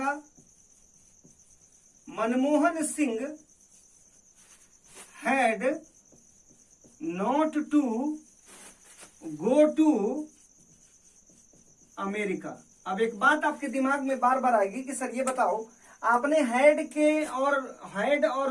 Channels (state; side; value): identical; both; correlation 1.00